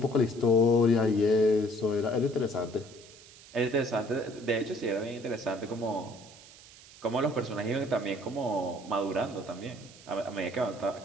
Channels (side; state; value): right; noise; hiss, 21 dB below the sound